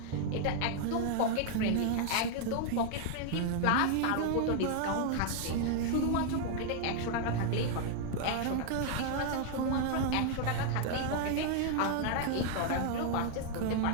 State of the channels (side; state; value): both; different; correlation 0.00